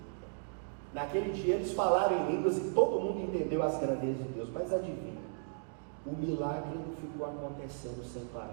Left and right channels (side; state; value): left; silent; digital silence